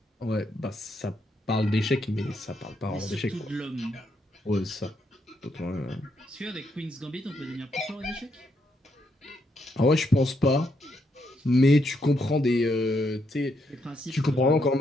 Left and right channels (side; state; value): both; normal; correlation 0.77